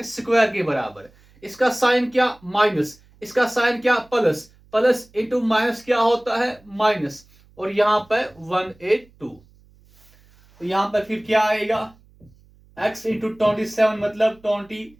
स्क्वायर के बराबर। इसका साइन क्या माइनस, इसका साइन क्या प्लस, प्लस इंटू माइनस क्या होता है माइनस, और यहां पर 182। तो यहां पर फिर क्या आएगा x इंटू 27 मतलब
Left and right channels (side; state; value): right; noise; hum, 29 dB below the sound